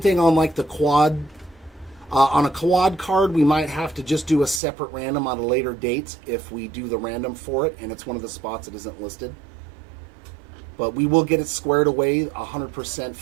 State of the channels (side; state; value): left; drops out; at 4.6 s